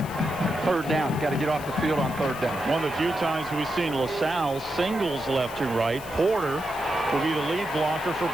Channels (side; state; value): left; noise; hiss, 17 dB below the sound